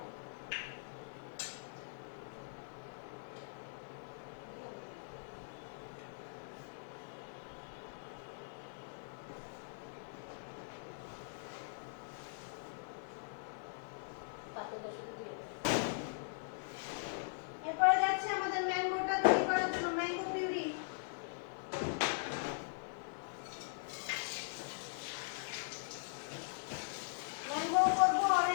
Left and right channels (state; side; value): silent; right; digital silence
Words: এরপরে যাচ্ছে আমাদের ম্যাঙ্গোটা তৈরি করার জন্য, ম্যাঙ্গো পিউরি। ম্যাঙ্গো করবো,